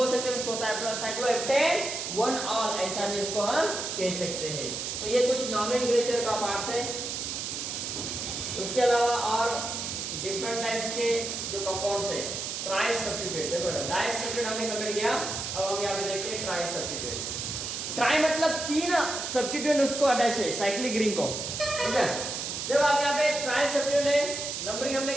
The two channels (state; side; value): noise; right; hiss, 4 dB below the sound